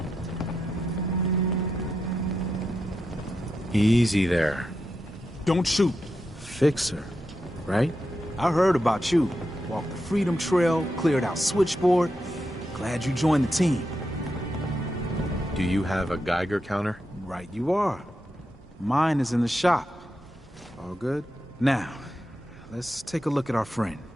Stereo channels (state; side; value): normal; both; correlation 0.86